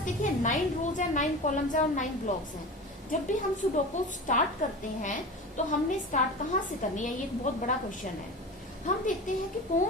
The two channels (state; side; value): normal; both; correlation 0.31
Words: देखिए 9 रोज है, 9 कॉलम्स है और 9 ब्लॉक्स हैं। जब भी हम सुडोकू स्टार्ट करते हैं तो हमने स्टार्ट कहाँ से करनी है, ये एक बहुत बड़ा क्वेश्चन है। हम देखते हैं कि